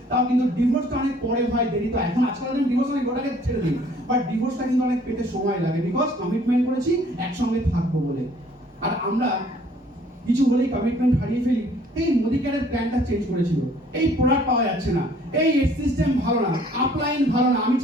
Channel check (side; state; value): both; normal; correlation 0.58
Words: তাও কিন্তু ডিভোর্সটা অনেক পরে হয়, দেরি তো। এখন আজকাল দিন ডিভোর্স অনেক গোটাকে ছেড়ে দিই, বাট ডিভোর্সটা কিন্তু অনেক পেতে সময় লাগে, বিকজ কমিটমেন্ট করেছি একসঙ্গে থাকবো বলে। আর আমরা কিছু হলেই কমিটমেন্ট হারিয়ে ফেলি। এই মোদি কেয়ারের প্ল্যানটা চেঞ্জ করেছিল, এই প্রোডাক্ট পাওয়া যাচ্ছে না, এই সিস্টেম ভালো না, আপলাইন ভালো না, আমি